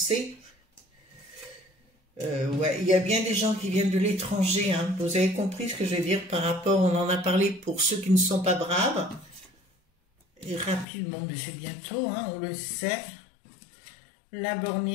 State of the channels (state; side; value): drops out; right; at 10.9 s